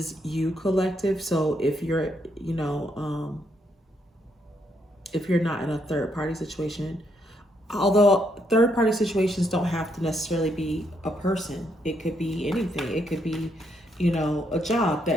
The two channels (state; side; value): normal; both; correlation 0.75